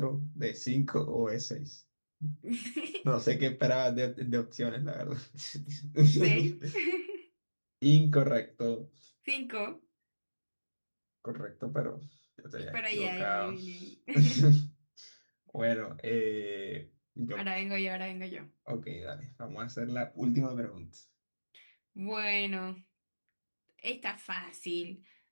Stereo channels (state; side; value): inverted; both; correlation -1.00